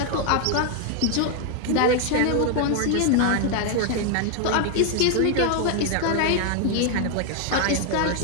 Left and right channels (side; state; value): both; different; correlation 0.00